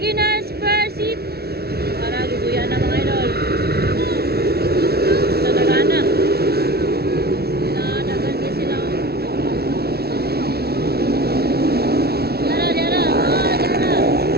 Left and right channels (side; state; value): left; late; 0.46 ms